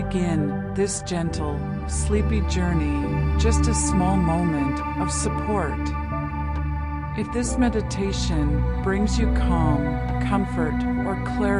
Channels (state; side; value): identical; both; correlation 1.00